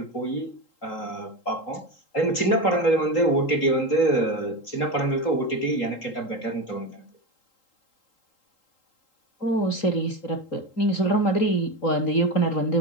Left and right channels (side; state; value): right; late; 3.8 ms